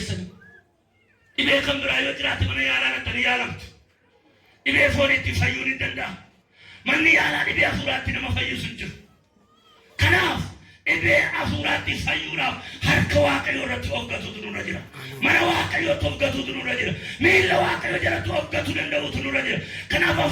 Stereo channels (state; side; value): identical; both; correlation 1.00